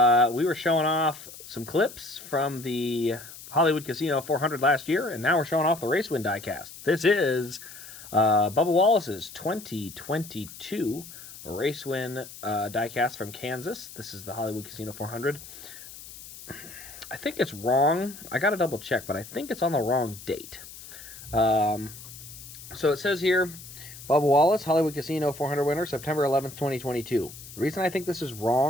were showing off some clips from the Hollywood Casino 400 last year, and now we're showing off the Racewind Diecast. This is Bubba Wallace's 2022 Racewind Diecast from Kansas. This is the Hollywood Casino 400. I think it's wrong. I got to double check, but I think it's on the wrong date. So it says here, Bubba Wallace, Hollywood Casino 400 winner, September 11th, 2022. The reason I think this is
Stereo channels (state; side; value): noise; left; hiss, 15 dB below the sound